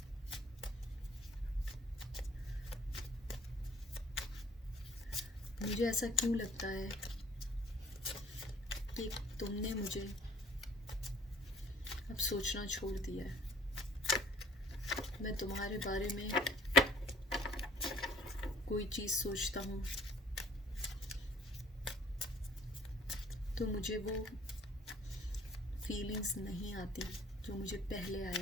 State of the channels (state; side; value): normal; both; correlation 0.57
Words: मुझे ऐसा क्यों लगता है कि तुमने मुझे अब सोचना छोड़ दिया है। मैं तुम्हारे बारे में कोई चीज़ सोचता हूँ तो मुझे वो फीलिंग्स नहीं आती जो मुझे पहले